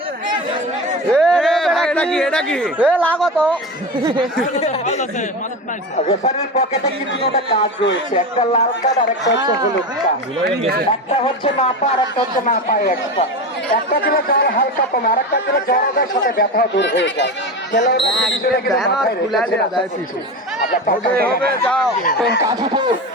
রেফারির পকেটে কিন্তু একটা কাজ রয়েছে, একটা লাল কার্ড আর একটা হচ্ছে হলুদ কার্ড। একটা হচ্ছে মাপা আর একটা হচ্ছে না পায় এক্সট্রা। একটা দিলে জ্বর হালকা কমে, আর একটা দিলে জ্বরের সাথে ব্যথা দূর হয়ে যায়।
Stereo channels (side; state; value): both; normal; correlation 0.23